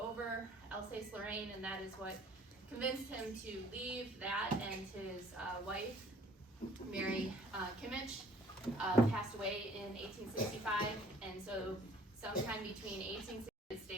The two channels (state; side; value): normal; both; correlation 0.56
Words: over Alsace-Lorraine, and that is what convinced him to leave that, and his wife, Mary Kimmich, passed away in 1865, and so sometime between 1860